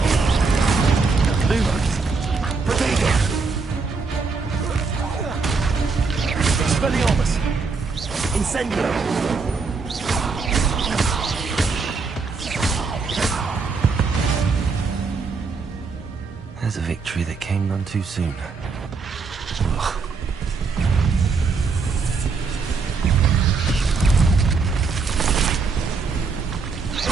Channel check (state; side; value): quieter; left; 4.6 dB